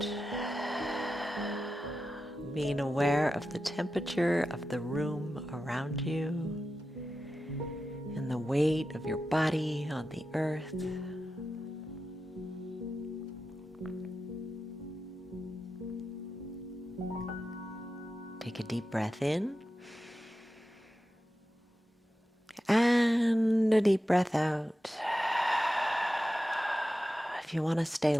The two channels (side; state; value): both; normal; correlation 0.92